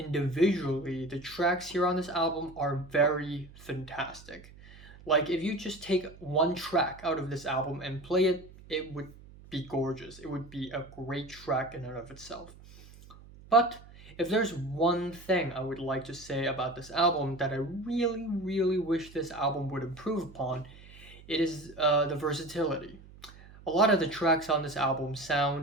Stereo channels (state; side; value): noise; right; hum, 20 dB below the sound